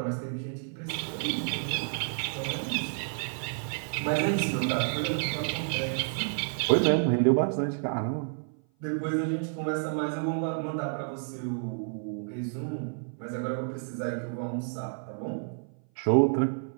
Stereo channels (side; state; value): left; silent; 56 dB below the other